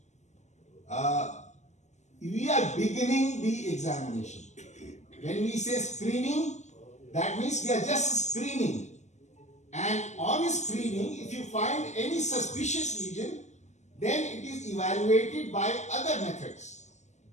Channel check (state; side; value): late; right; 0.34 ms